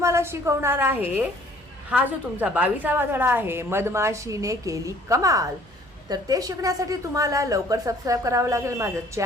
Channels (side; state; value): both; normal; correlation 0.56